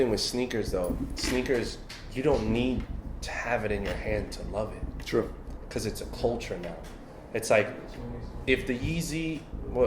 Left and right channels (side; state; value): both; identical; correlation 1.00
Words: with sneakers, though. Sneakers, you don't need to have it in your hand to love it. True. Because it's a culture now. It's like, if the Yeezy,